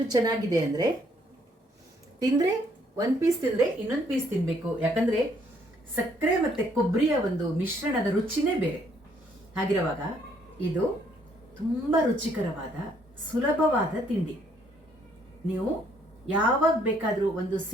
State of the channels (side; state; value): both; normal; correlation 0.67